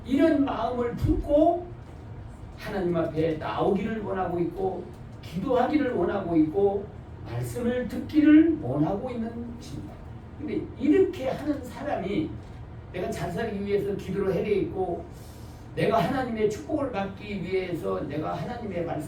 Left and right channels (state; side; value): identical; both; correlation 1.00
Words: 이런 마음을 품고 하나님 앞에 나오기를 원하고 있고 기도하기를 원하고 있고 말씀을 듣기를 원하고 있는 것입니다. 근데 이렇게 하는 사람이 내가 잘 살기 위해서 기도를 해야 되겠고 내가 하나님의 축복을 받기 위해서 내가 하나님의